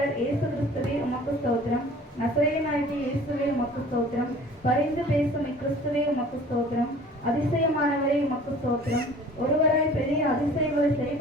இயேசு கிறிஸ்துவே உமக்கு ஸ்தோத்திரம். நசரேயனாகிய இயேசுவே உமக்கு ஸ்தோத்திரம். பரிந்து பேசும் இக்கிறிஸ்துவே உமக்கு ஸ்தோத்திரம். அதிசயமானவரே உமக்கு ஸ்தோத்திரம். ஒருவராய் பெரிய அதிசயங்களை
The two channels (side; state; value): both; normal; correlation 0.47